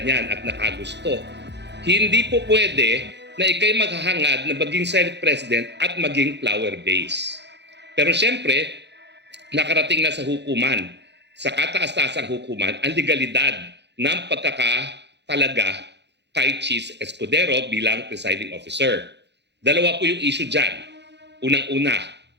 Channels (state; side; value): late; left; 0.50 ms